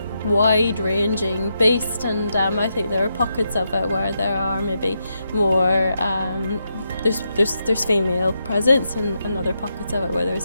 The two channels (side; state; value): both; inverted; correlation -0.83